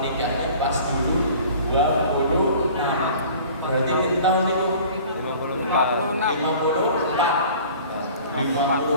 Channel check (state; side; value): inverted; both; correlation -0.46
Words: pas dulu 26. Berarti berapa tahun itu?